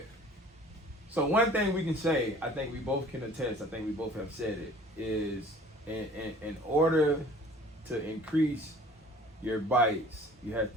So one thing we can say, I think we both can attest, I think we both have said it, is in order to increase your bites, you have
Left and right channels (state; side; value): normal; both; correlation 0.49